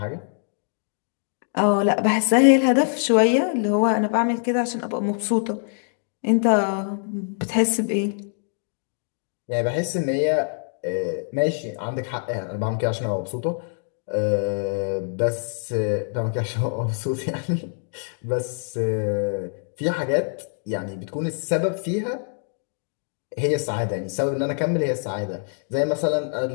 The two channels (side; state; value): right; silent; 60 dB below the other